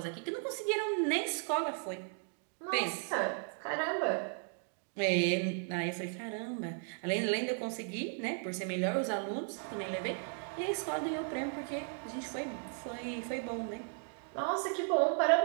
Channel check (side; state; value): left; silent; 54 dB below the other